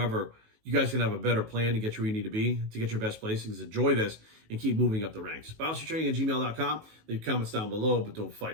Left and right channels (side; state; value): left; late; 19 ms